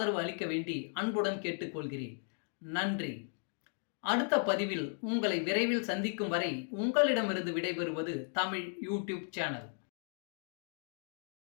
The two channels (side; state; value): right; silent; 54 dB below the other